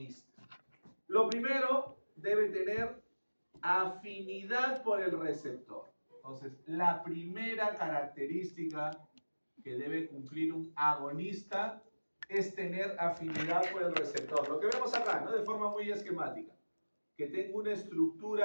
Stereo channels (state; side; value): inverted; both; correlation -1.00